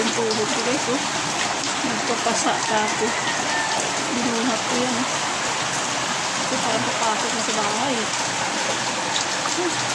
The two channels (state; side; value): identical; both; correlation 1.00